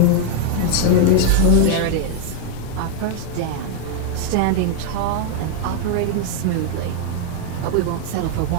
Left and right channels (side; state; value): both; different; correlation 0.00